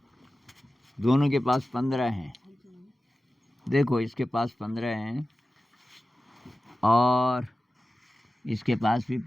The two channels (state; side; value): normal; both; correlation 0.95